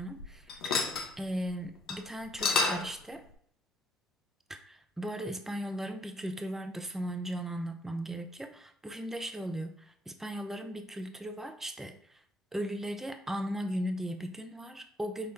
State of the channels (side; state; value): both; normal; correlation 0.67